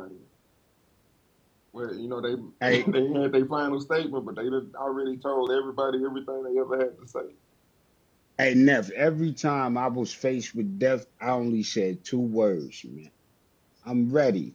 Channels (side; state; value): both; identical; correlation 1.00